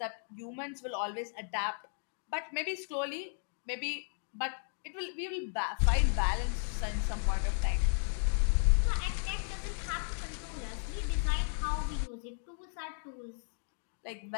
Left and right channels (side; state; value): right; silent; 55 dB below the other